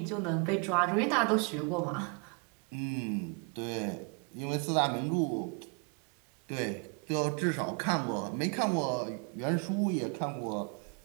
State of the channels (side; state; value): left; quieter; 35.0 dB